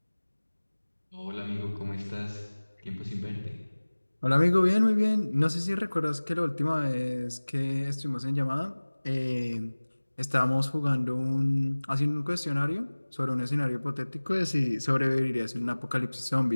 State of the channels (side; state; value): both; inverted; correlation -1.00